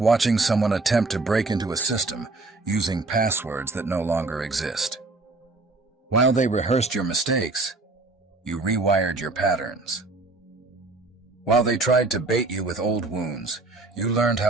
watching someone attempt to break into a system using passwords that no longer exist. While they rehearsed your mistakes, you rewired your patterns. While they tried to bait you with old wounds, you learned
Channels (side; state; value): left; quieter; 3.4 dB